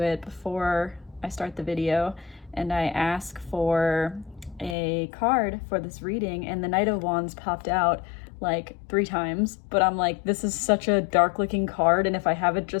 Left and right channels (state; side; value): drops out; right; at 4.8 s